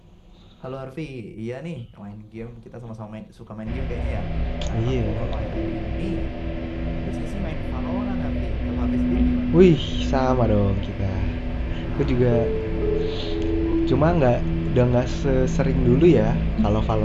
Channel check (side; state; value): both; identical; correlation 1.00